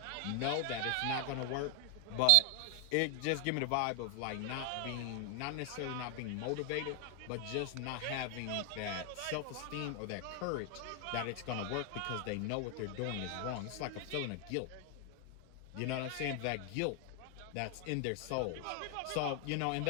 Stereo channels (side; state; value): both; different; correlation 0.00